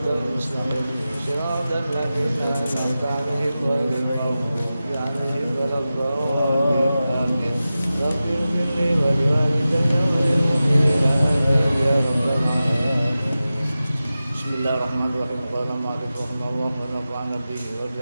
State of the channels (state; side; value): inverted; both; correlation -0.94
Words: المستقيم صراط الذين أنعمت عليهم غير المغضوب عليهم ولا الضالين رب اغفر لي ولوالدي وللمؤمنين آمين يا رب العالمين بسم الله الرحمن الرحيم قال المؤلف رحمه الله ونفعنا به